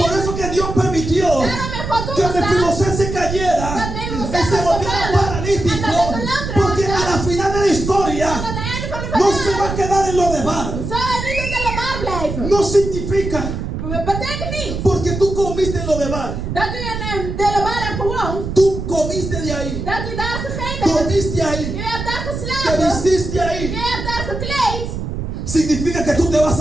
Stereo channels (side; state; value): right; noise; rumble, 5 dB below the sound